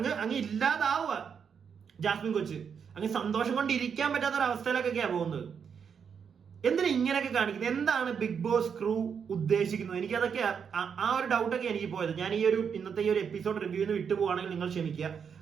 ഇല്ലാതാവുക ജാസ്മിൻ കൊച്ച്. അങ്ങ് സന്തോഷം കൊണ്ട് ഇരിക്കാൻ പറ്റാത്ത ഒരു അവസ്ഥയിലൊക്കെയാ പോകുന്നത്. എന്തിനാ ഇങ്ങനെയൊക്കെ കാണിക്കുന്നത്? എന്താണ് ബിഗ് ബോസ് ക്രൂ ഉദ്ദേശിക്കുന്നത്? എനിക്കതൊക്കെ ആ ഒരു ഡൗട്ടൊക്കെ എനിക്ക് പോയത്. ഞാൻ ഈ ഒരു ഇന്നത്തെ ഈ ഒരു എപ്പിസോഡ് റിവ്യൂന്ന് വിട്ടുപോവാണെങ്കിൽ നിങ്ങൾ ക്ഷമിക്കുക.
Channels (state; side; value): quieter; left; 6.9 dB